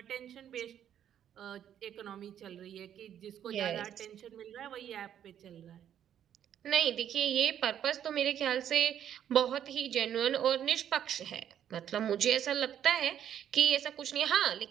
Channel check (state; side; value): quieter; left; 10.0 dB